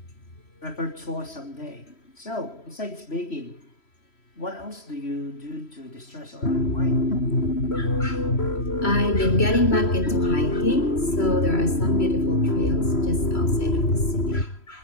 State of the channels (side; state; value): right; late; 3.1 ms